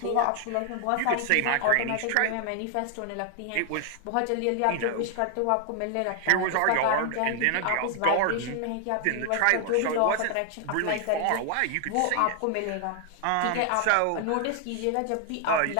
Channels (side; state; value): both; different; correlation 0.00